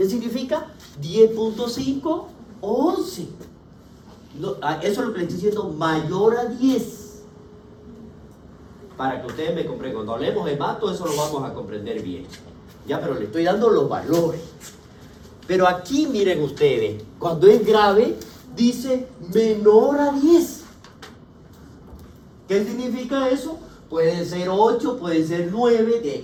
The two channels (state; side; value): identical; both; correlation 1.00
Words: significa? 10.5 o 11. No, eso es lo que le estoy diciendo, mayor a 10. Para que ustedes me comprendan, cuando hablemos de hemato, eso lo vamos a comprender bien. Ya, pero le estoy dando los valores. Pero aquí, miren ustedes, cuando es grave, dice menor a 10. ¿Qué significa eso? Puede ser 8, puede ser 9